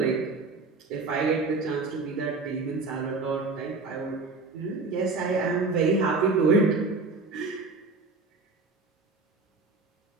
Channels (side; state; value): left; quieter; 3.8 dB